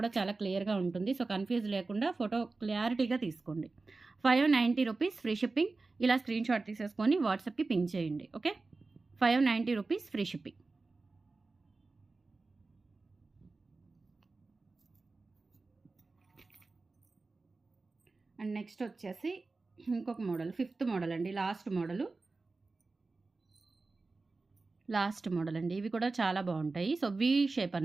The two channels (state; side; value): quieter; left; 3.7 dB